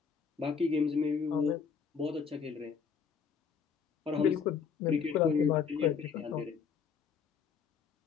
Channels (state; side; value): quieter; right; 6.3 dB